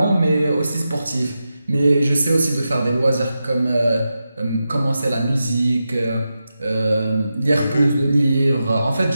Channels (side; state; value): both; inverted; correlation -0.90